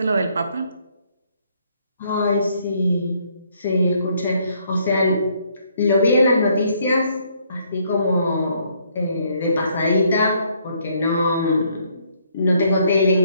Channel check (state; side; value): inverted; both; correlation -0.68